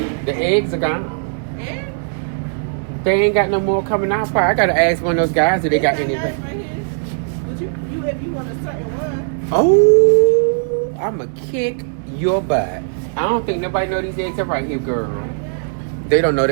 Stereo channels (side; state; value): left; silent; digital silence